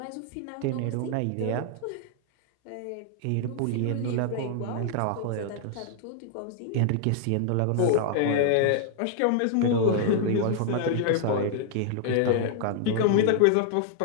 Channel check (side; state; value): both; different; correlation -0.01